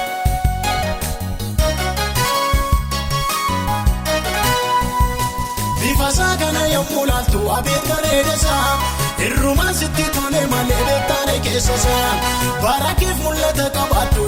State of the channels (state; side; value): identical; both; correlation 1.00